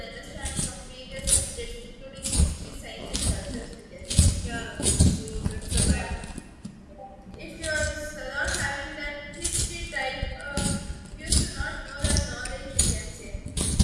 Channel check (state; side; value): identical; both; correlation 1.00